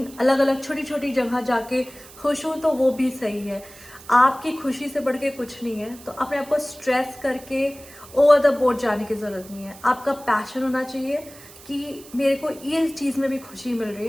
अलग अलग छोटी छोटी जगह जाके खुश हूँ तो वो भी सही है। आपकी खुशी से बढ़ के कुछ नहीं है, तो अपने आप को स्ट्रेस करके ओवर द बोर्ड जाने की ज़रूरत नहीं है। आपका पैशन होना चाहिए कि मेरे को ये चीज़ में भी खुशी मिल रही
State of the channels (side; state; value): right; noise; hiss, 20 dB below the sound